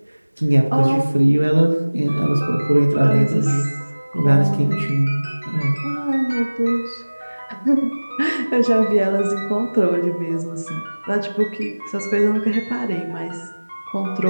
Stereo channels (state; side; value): inverted; both; correlation -1.00